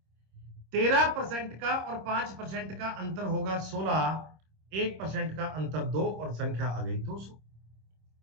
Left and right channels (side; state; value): left; late; 26 ms